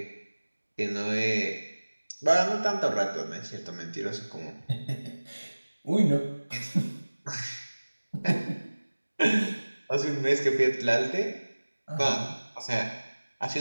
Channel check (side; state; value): both; inverted; correlation -1.00